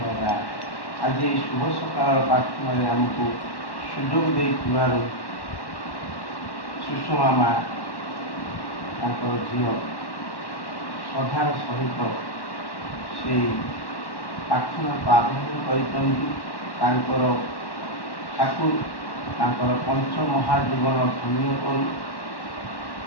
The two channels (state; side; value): late; right; 1.1 ms